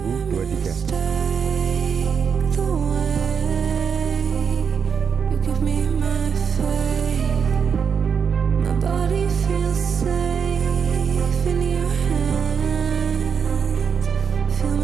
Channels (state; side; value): quieter; left; 6.6 dB